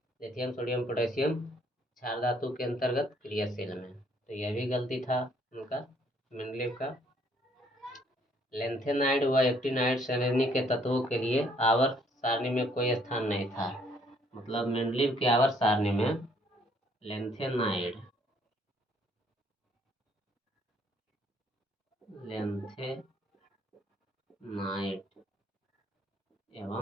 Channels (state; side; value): normal; both; correlation 0.65